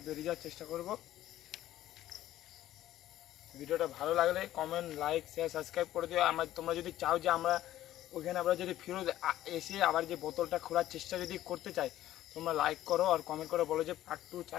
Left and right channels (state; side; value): quieter; right; 13.6 dB